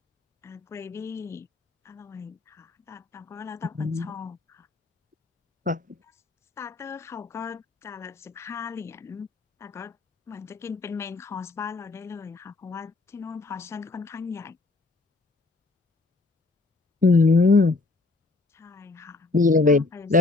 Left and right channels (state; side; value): quieter; right; 3.5 dB